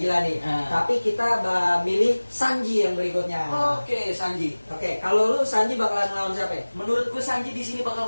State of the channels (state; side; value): inverted; both; correlation -1.00